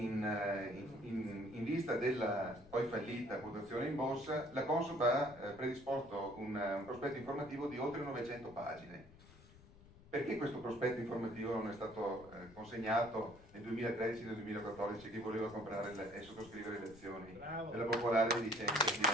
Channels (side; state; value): left; noise; rumble, 21 dB below the sound